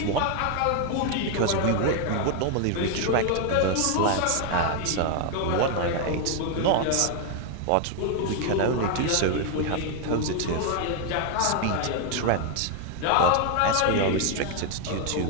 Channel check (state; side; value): different; both; correlation 0.01